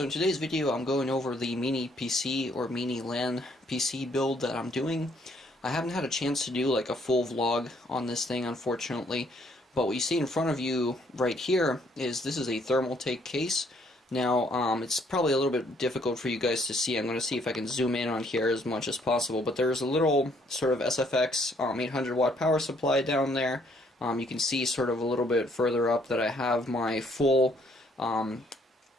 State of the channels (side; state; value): both; normal; correlation 0.66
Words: in today's video I'm going over the mini PC or mini LAN PC build that I'm doing. I haven't had a chance to do like a full vlog on this thing, unfortunately, but what you see in front of you right here is this is a thermal take case. Now it's probably a little bit difficult for you guys to see. I'm going to see if I can zoom in on here as much as possible, but there's a little sort of SFX 800 watt power supply down there. You can see sort of a little bit further up that I have my full